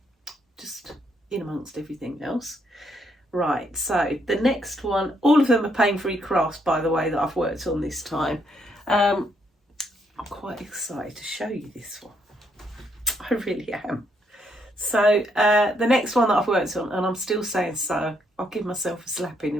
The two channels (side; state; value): both; normal; correlation 0.73